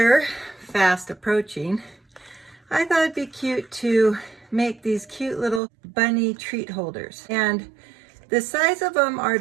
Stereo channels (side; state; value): left; drops out; at 5.6 s